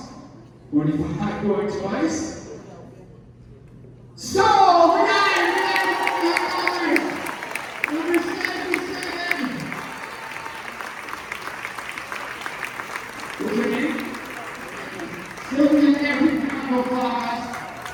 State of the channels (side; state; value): both; identical; correlation 1.00